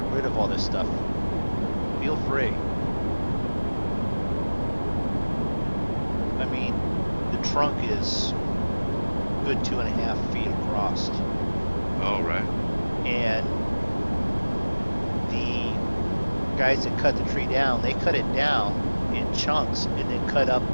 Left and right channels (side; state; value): both; inverted; correlation -1.00